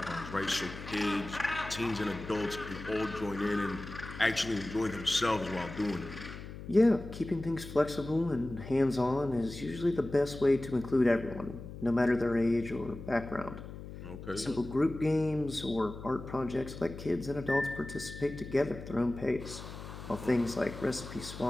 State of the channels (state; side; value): noise; left; hum, 12 dB below the sound